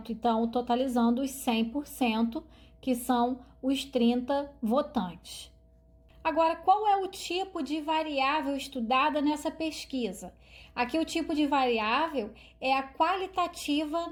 Então totalizando os 100%, que são os 30 votantes. Agora, qual é o tipo de variável estudada nessa pesquisa? Aqui o tipo de variável é a qualitativa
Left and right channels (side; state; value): both; identical; correlation 1.00